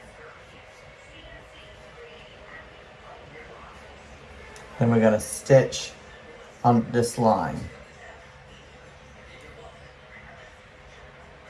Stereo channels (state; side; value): identical; both; correlation 1.00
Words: Then we're going to stitch on this line.